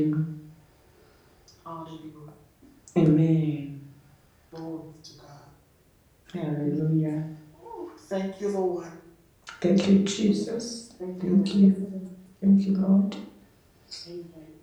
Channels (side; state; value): both; identical; correlation 1.00